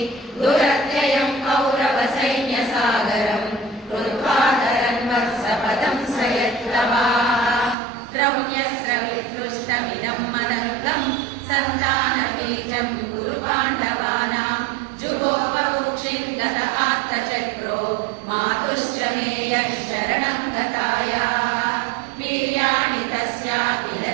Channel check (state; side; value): drops out; left; at 7.8 s